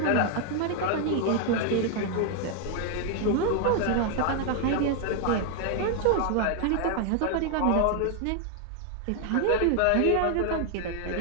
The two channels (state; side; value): different; both; correlation 0.00